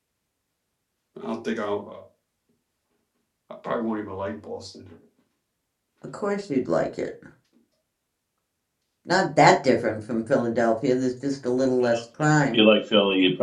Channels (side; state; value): both; identical; correlation 1.00